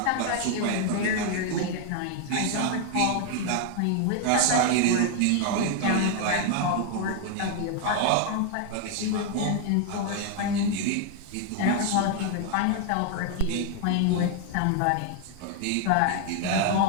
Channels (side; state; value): both; different; correlation 0.00